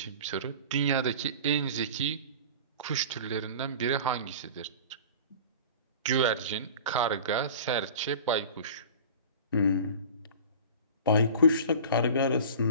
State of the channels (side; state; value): both; inverted; correlation -0.39